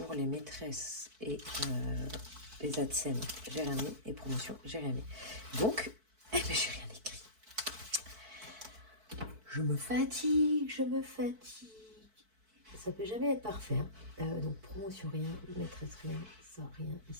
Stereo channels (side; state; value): left; late; 4.5 ms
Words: les maîtresses et les AdSense, j'ai rien mis. Et promotion, j'ai rien mis. Donc, eh ben, j'ai rien écrit. Je me fatigue. Ça peut jamais être parfait. Hein. Donc, promotion, rien. Maîtresse, rien. Ça, rien.